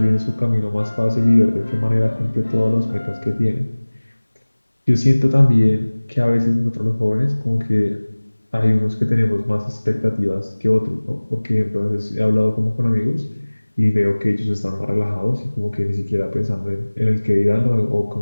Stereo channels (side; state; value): both; inverted; correlation -1.00